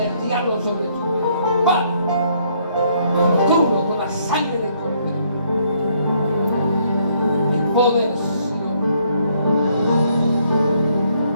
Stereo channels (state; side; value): inverted; both; correlation -0.69